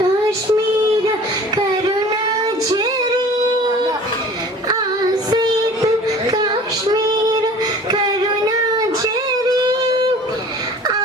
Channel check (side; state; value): both; normal; correlation 0.45